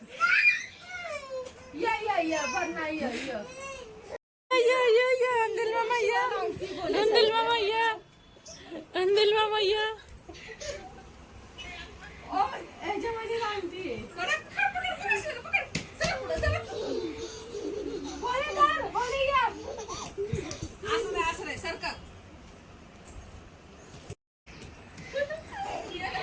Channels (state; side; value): identical; both; correlation 1.00